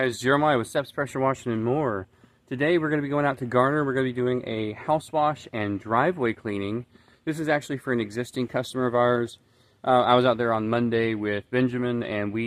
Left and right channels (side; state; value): both; identical; correlation 1.00